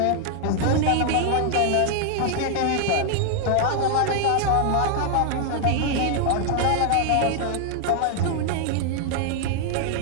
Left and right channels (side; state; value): both; different; correlation 0.00